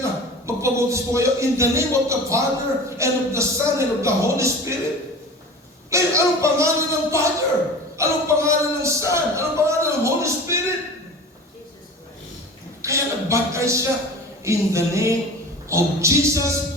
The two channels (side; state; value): both; normal; correlation 0.36